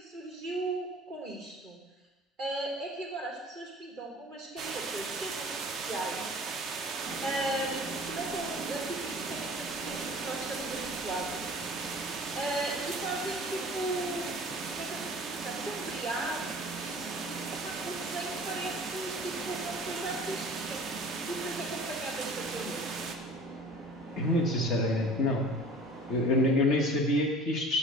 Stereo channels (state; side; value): normal; both; correlation 0.45